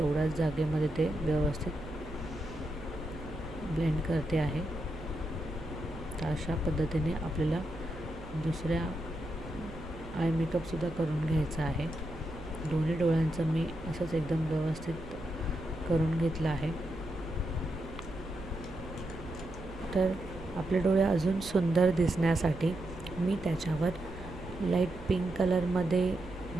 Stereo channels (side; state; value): right; noise; hum, 15 dB below the sound